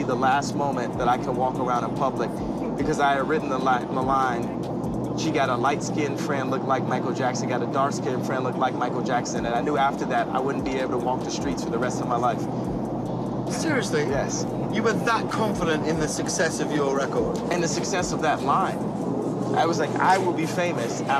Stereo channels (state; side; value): identical; both; correlation 1.00